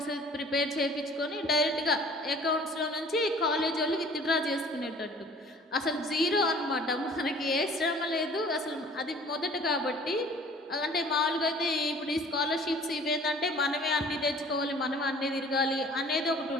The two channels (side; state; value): both; normal; correlation 0.50